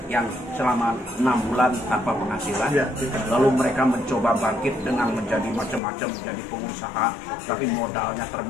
yang selama 6 bulan tanpa penghasilan, lalu mereka mencoba bangkit dengan menjadi macam-macam, menjadi pengusaha, tapi modalnya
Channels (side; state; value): right; drops out; at 5.8 s